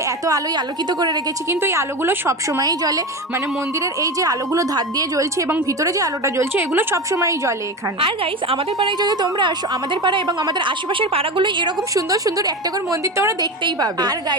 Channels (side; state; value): both; normal; correlation 0.23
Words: এত আলোয় আলোকিত করে রেখেছি, কিন্তু এই আলোগুলো সবসময়ই জ্বলে। মানে মন্দিরের এই যে আলোগুলো ধার দিয়ে জ্বলছে এবং ভিতরে যে আলোটা জ্বলছে, এগুলো সবসময়ই জ্বলে এখানে। আর গাইস, আমাদের পাড়ায় যদি তোমরা আসো, আমাদের পাড়া এবং আমাদের আশেপাশের পাড়াগুলো এরকম সুন্দর সুন্দর একটা করে মন্দির তোমরা দেখতেই পাবে। আর